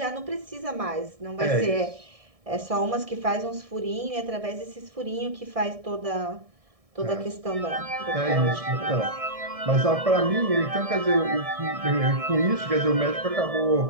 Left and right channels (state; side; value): late; left; 1.6 ms